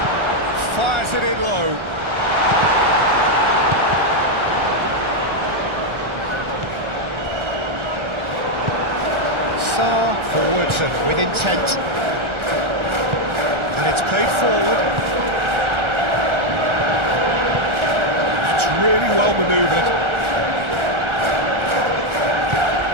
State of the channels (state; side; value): late; left; 1.4 ms